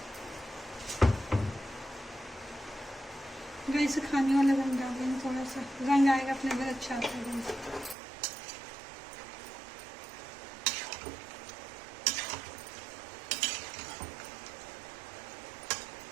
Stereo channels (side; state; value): left; drops out; at 8.0 s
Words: गैस खाने वाला रंग डाल देंगे, थोड़ा सा रंग आएगा अपने घर अच्छा आता है।